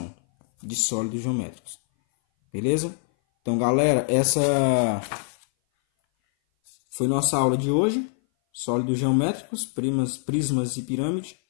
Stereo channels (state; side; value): silent; right; 58 dB below the other